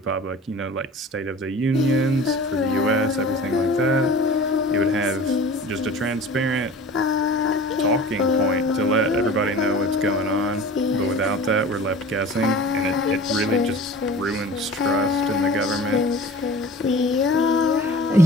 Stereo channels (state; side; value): normal; both; correlation 0.40